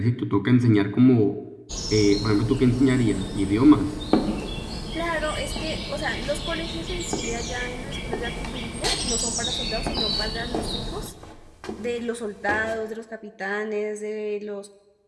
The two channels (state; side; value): identical; both; correlation 1.00